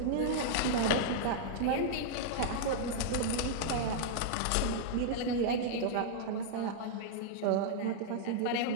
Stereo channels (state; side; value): different; both; correlation -0.01